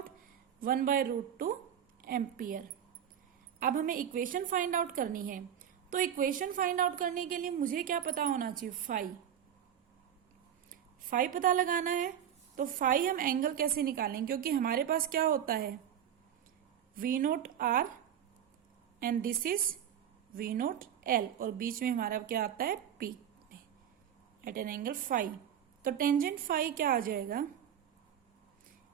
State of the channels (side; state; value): left; quieter; 9.5 dB